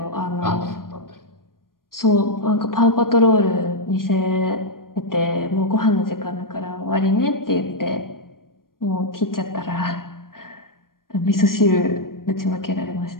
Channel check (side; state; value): right; late; 0.91 ms